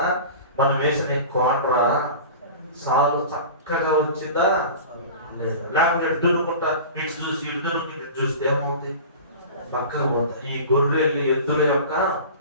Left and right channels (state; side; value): inverted; both; correlation -0.36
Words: మనం వేసిన కోండ్రా సాలు చక్కగా వచ్చిందా లేదా? లేకపోతే ఎడ్డునుకుంటా ఇటు చూసి ఇడ్డునుకుంటే ఇటు చూస్తే ఏమవుతుంది? పక్కగా పోతాయి. ఈ గొర్రెలు ఎద్దుల యొక్క